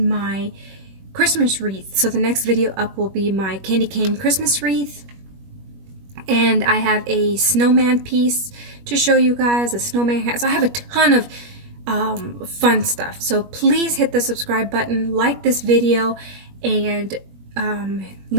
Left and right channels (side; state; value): left; late; 21 ms